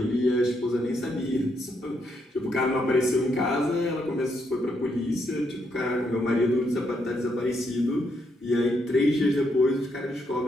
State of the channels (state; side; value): normal; both; correlation 0.77